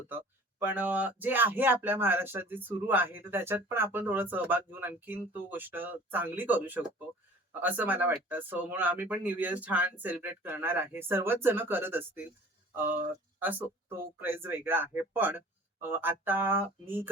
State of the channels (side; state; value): both; normal; correlation 0.47